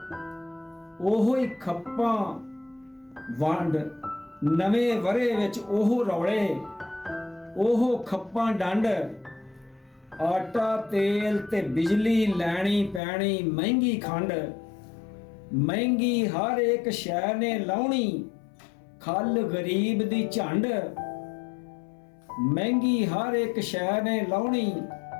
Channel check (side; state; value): right; drops out; at 13.0 s